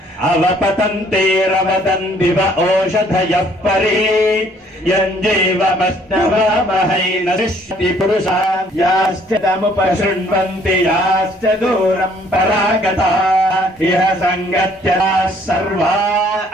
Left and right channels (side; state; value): both; normal; correlation 0.61